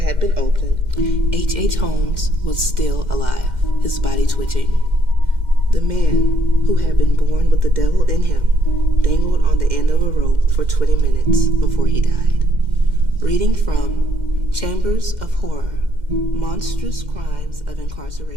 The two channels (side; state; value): left; late; 2.1 ms